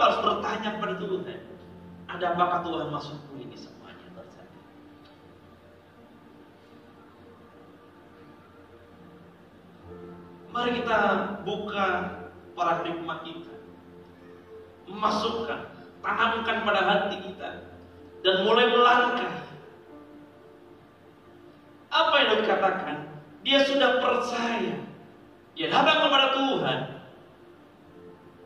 harus bertanya kepada Tuhan, ada apakah Tuhan maksudku ini semuanya terjadi? Mari kita buka paradigma kita, masukkan, tanamkan pada hati kita, dan mulai melangkah. Apa yang dikatakan? Dia sudah percaya, dia datang kepada Tuhan.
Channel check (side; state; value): both; identical; correlation 1.00